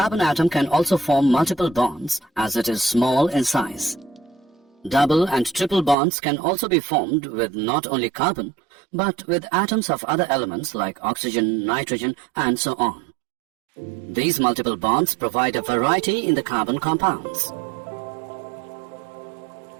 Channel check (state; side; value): drops out; left; at 6.0 s